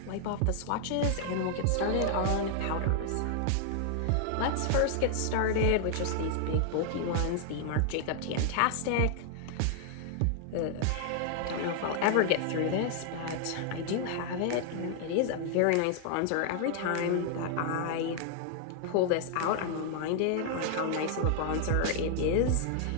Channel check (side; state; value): both; different; correlation 0.00